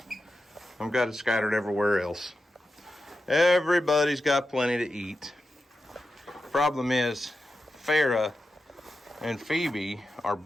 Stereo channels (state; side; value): normal; both; correlation 0.91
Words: I've got it scattered everywhere else. Everybody's got plenty to eat. Problem is, Farrah and Phoebe are